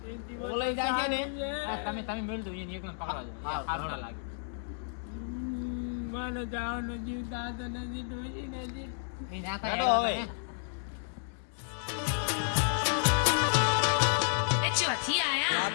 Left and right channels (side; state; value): right; silent; digital silence